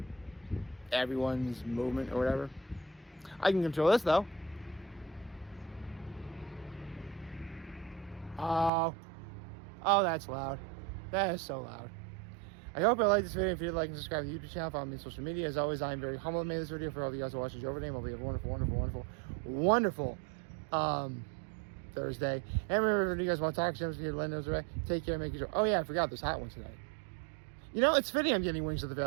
everyone's movement or whatever. I can control this though. Oh, that's loud. That is so loud. I hope you liked this video. If you did, like and subscribe to the YouTube channel, follow me on social media. As always, I am very humbled to make this video. For all of you guys who watch this over name, I'll be a wonderful Thursday. And remember, if you guys want to talk to them, let those right. Take care, make sure. Oh yeah, I forgot there's hot ones today. It's fitting I'm getting Wings of the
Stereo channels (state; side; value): drops out; left; at 8.7 s